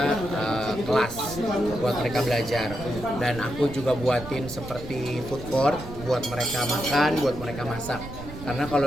kelas buat mereka belajar. Dan aku juga buatin seperti food court buat mereka makan, buat mereka masak. Karena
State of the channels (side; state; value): right; noise; rumble, 12 dB below the sound